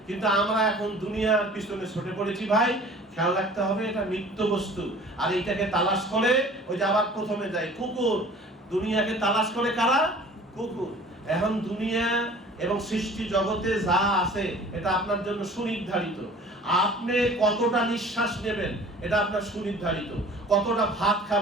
কিন্তু আমরা এখন দুনিয়ার পিছনে ছুটে পড়েছি ভাই। খেয়াল রাখতে হবে, এটা নিত্য বস্তু। আর এইটাকে তালাশ করে, ওই যে আবার প্রথমে যায় কুকুর, দুনিয়াকে তালাশ করে কারা? কুকুর। এখন দুনিয়া এবং সৃষ্টি জগতে যা আছে এটা আপনার জন্য সুনির্ধারিত। আপনি কতটা নিঃশ্বাস নেবেন এটা আপনার সুনির্ধারিত, কতটা ভাত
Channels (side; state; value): both; normal; correlation 0.47